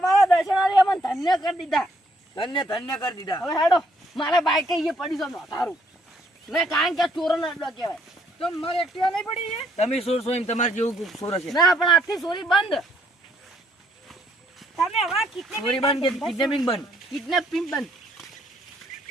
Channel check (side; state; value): both; normal; correlation 0.68